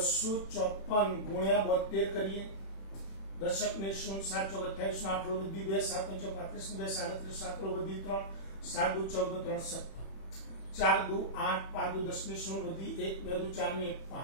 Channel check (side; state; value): right; late; 31 ms